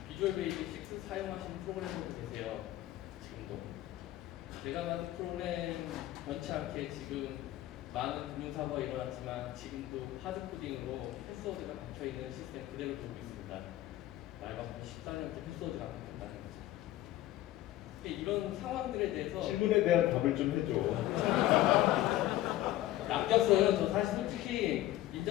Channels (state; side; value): quieter; right; 14.8 dB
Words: 비주얼 베이직 6 사용하시는 프로그래머도 계세요. 지금도 제가 만든 프로그램 변치 않게 지금 많은 금융사고가 일어났지만 지금도 하드코딩으로 패스워드가 박혀있는 시스템 그대로 돌고 있습니다. 말 바꾸면 14년째 패스워드가 바뀌었다는 거죠. 이런 상황들에 대해서 질문에 대한 답을 좀 해줘. 낚였어요. 저 사실 솔직히 임